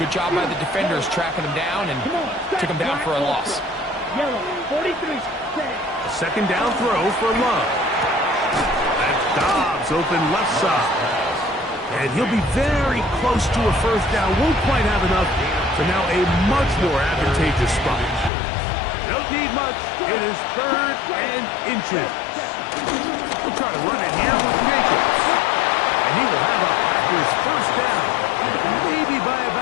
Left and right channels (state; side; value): drops out; right; at 18.3 s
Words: job by the defenders tracking him down and took him down for a loss. Yellow, 43, A 2nd down throw for Love. That's Dobbs open left side. And he'll be very close to a first down. Won't quite have enough to now a much more advantageous spot. Don't need much. It is 3rd and inches. We'll try to run it here with Jacobs. And he will have a Packers first down. Maybe by